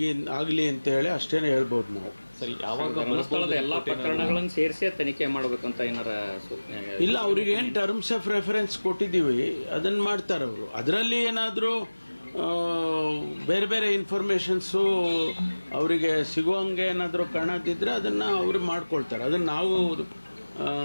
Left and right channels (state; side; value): inverted; both; correlation -1.00